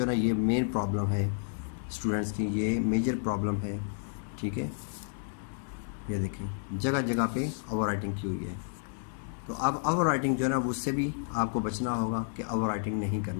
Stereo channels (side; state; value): right; silent; 57 dB below the other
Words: ना ये मेन प्रॉब्लम है स्टूडेंट्स की, ये मेजर प्रॉब्लम है। ठीक है, ये देखें जगह जगह पे ओवर राइटिंग की हुई है। तो अब ओवर राइटिंग जो है ना उससे भी आपको बचना होगा कि ओवर राइटिंग नहीं